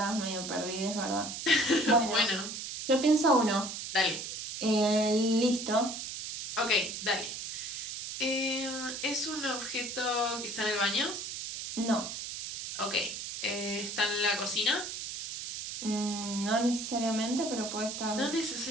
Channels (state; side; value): noise; right; hiss, 6 dB below the sound